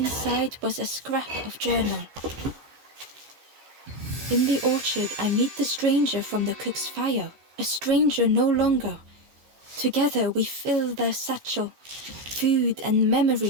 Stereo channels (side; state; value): left; late; 15 ms